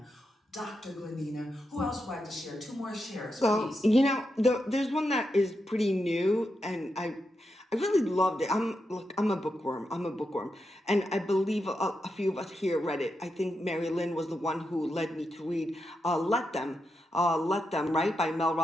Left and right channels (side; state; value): both; normal; correlation 0.86